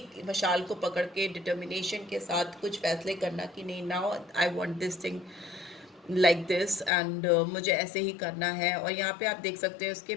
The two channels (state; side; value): drops out; right; at 6.9 s